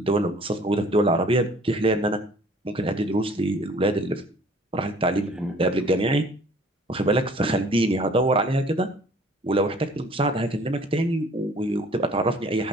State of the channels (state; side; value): normal; both; correlation 0.53